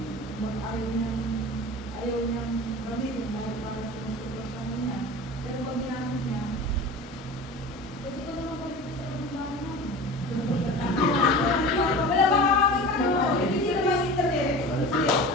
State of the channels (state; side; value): normal; both; correlation 0.35